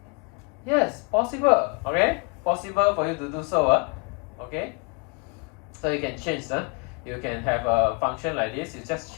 yes, possible. Okay, possible for you to do so. Okay, so you can change. You can have a function like this. You just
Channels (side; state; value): right; quieter; 31.2 dB